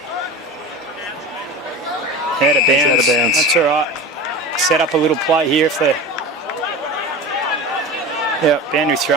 out of bounds. Out of bounds. That's all right. Set up a little play here if they're... Yeah, boundary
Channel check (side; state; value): both; normal; correlation 0.31